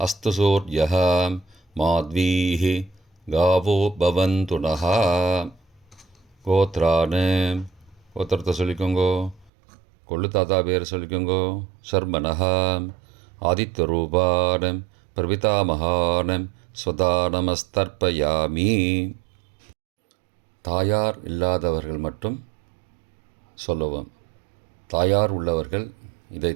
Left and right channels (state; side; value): drops out; left; at 9.5 s